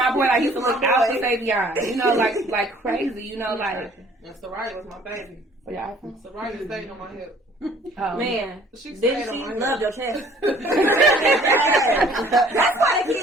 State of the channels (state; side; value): normal; both; correlation 0.55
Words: boy. Like, he used to look out for Savion. You know, like crazy. You know, like. And Soraya was my baby. Yeah. Soraya stayed on my hip. Man, she loved your chest. That's why the